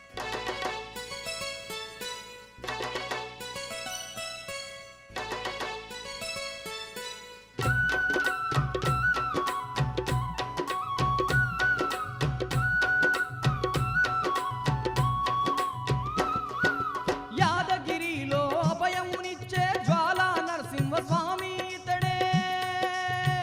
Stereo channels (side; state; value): both; identical; correlation 1.00